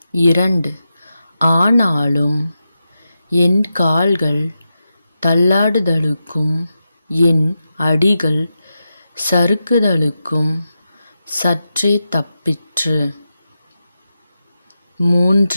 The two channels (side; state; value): both; inverted; correlation -0.89